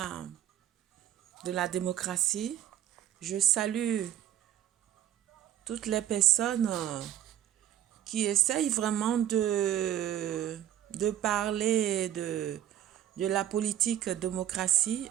de la démocratie. Je salue toutes les personnes qui essayent vraiment de parler de la politique démocratie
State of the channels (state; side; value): quieter; left; 11.4 dB